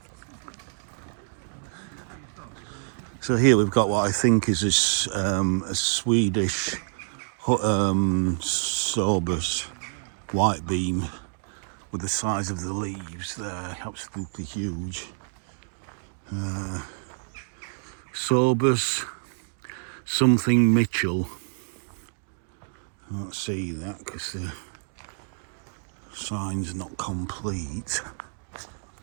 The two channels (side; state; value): left; silent; digital silence